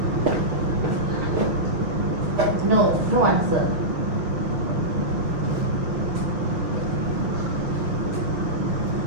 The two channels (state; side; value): late; left; 6.3 ms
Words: No, no answer.